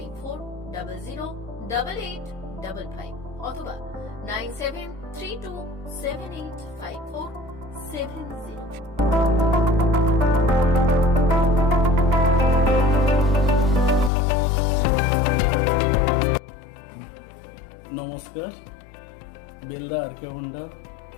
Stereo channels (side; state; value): right; drops out; at 14.1 s